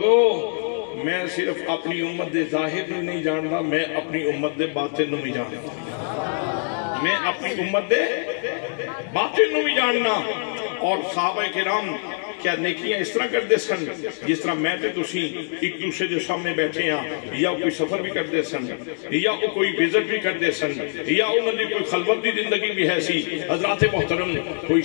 میں صرف اپنی امت دے ظاہر نہیں جانتا میں اپنی امت دے باطن نو بھی جانتا میں اپنی امت دے باطن نو بھی جاننا اور صحابہ کرام کیا نیکیاں اس طرح کر دے سن جس طرح میں تے تسی ایک دوسرے جو سامنے بیٹھے ہیں یا کوئی سفر بھی کر دے سن یا کوئی وزٹ بھی کر دے سن یا انہوں نے کوئی خلوت دی زندگی بھی ہے سی حضرات محترم کوئی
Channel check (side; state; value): right; silent; digital silence